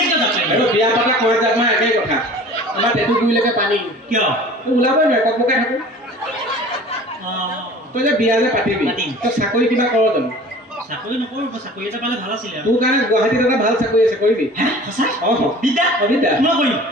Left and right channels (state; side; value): normal; both; correlation 0.44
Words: কিয় যাব আৰু বিয়া পতা কুঁৱাত জাপ মাৰা একেই কথা আমাৰ টেটু গুৰিলৈকে পানী কিয় তই ওলাবই নোৱাৰে ককবকাই থাকো তই যে বিয়া যে পাতিবি পাতিম। তই চাকৰি কিবা কৰ জানো চাকৰি নকৰোঁ চাকৰি এটা পালে ভাল আছিলে তোৰ কাৰণে গুৱাহাটীত এটা ভাল চাকৰি আছে কৰিবি সঁচা অঁ বিদ্যা অবিদ্যা মই কৰিম